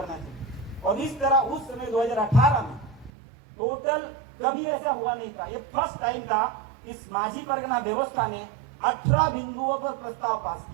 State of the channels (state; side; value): drops out; left; at 3.1 s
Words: चाहिए। और इस तरह उस समय 2018 में टोटल कभी ऐसा हुआ नहीं था, ये फर्स्ट टाइम था इस माझी परगना व्यवस्था ने 18 बिंदुओं पर प्रस्ताव पास